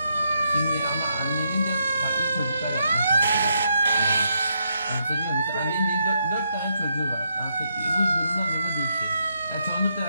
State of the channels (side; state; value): both; inverted; correlation -0.79